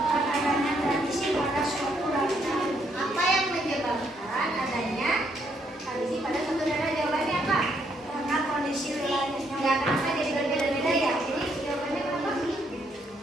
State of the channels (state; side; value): normal; both; correlation 0.73